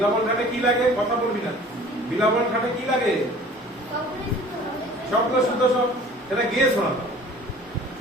ঠাটে কি লাগে? কথা বলবি না। বিলাবল ঠাটে কি লাগে? শব্দ শুদ্ধ সব, সেটা গেয়ে শোনাতে হবে।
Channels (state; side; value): normal; both; correlation 0.47